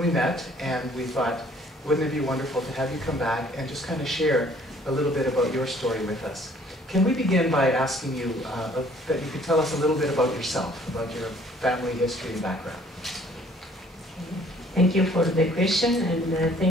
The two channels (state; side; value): normal; both; correlation 0.58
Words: we met, and we thought, wouldn't it be wonderful to have you come back and just kind of share a little bit about your story with us. Can we begin by asking you that you could tell us a little bit about yourself, about your family history and background? Thank you for the question, and